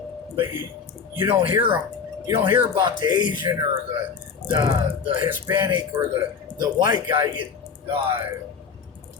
But you don't hear them. You don't hear about the Asian or the Hispanic or the white guy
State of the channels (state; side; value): quieter; right; 6.0 dB